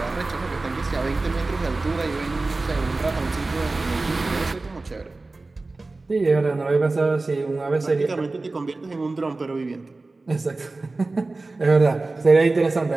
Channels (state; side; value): quieter; left; 3.4 dB